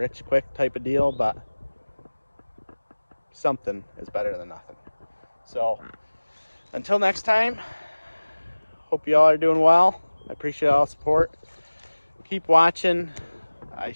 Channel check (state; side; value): inverted; both; correlation -1.00